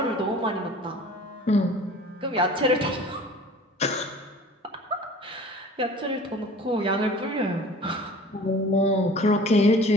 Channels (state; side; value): normal; both; correlation 0.44